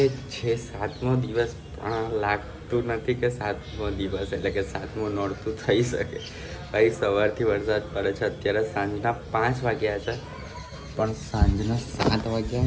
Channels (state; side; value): identical; both; correlation 1.00